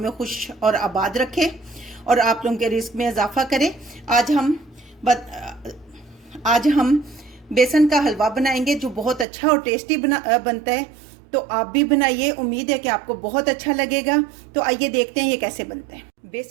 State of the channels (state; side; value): drops out; left; at 9.2 s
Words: खुश और आबाद रखे और आप लोगों के रिस्क में इजाफा करे। आज हम बेसन का हलवा बनाएंगे जो बहुत अच्छा और टेस्टी बनता है। तो आप भी बनाइए, उम्मीद है कि आपको बहुत अच्छा लगेगा। तो आइए देखते हैं ये कैसे बनता है।